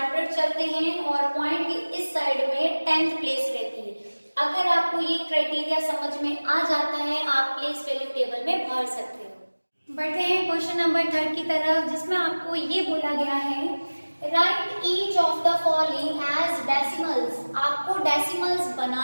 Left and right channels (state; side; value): inverted; both; correlation -1.00